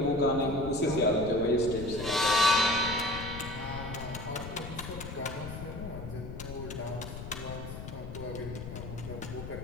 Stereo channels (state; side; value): noise; left; rumble, 9 dB below the sound